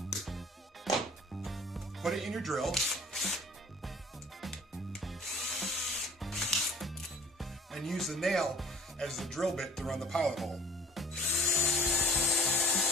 put it in your drill, and use the nail as the drill bit to run the pilot hole.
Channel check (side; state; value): both; normal; correlation 0.49